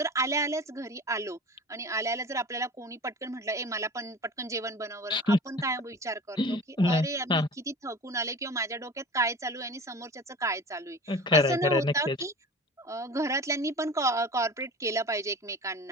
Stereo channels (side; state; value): both; normal; correlation 0.37